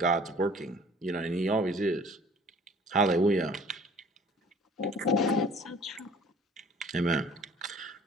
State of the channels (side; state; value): both; normal; correlation 0.51